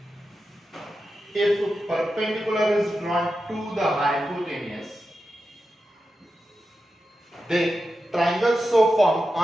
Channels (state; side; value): normal; both; correlation 0.90